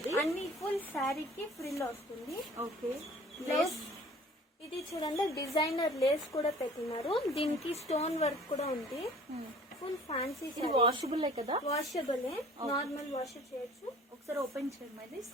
అన్ని ఫుల్ శారీకి ఫ్రిల్ వస్తుంది. ఓకే. లేస్ ఇది చూడండి, డిజైనర్ లేస్ కూడా పెట్టినారు. దీనికి స్టోన్ వర్క్ కూడా ఉంది. Full fancy. ఇది వాషబుల్ కదా? వాషబుల్, నార్మల్ వాష్ చేయొచ్చు. ఒకసారి ఓపెన్ చేయమ్మా ఇది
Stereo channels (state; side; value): normal; both; correlation 0.49